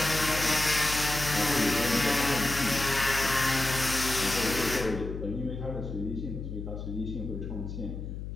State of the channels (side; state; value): left; noise; hum, 7 dB below the sound